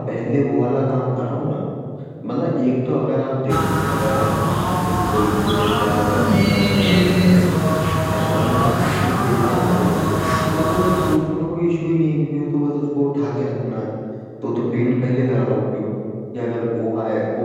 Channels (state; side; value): identical; both; correlation 1.00